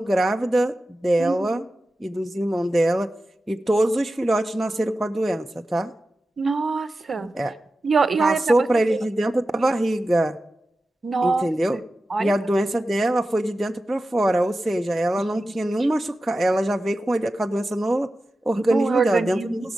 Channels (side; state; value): both; normal; correlation 0.93